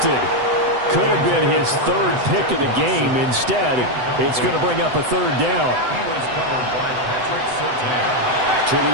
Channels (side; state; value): left; late; 8.0 ms